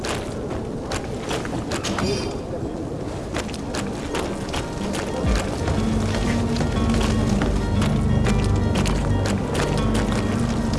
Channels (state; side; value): identical; both; correlation 1.00